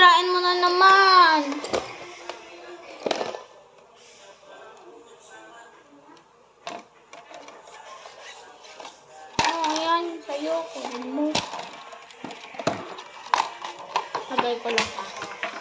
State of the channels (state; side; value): identical; both; correlation 1.00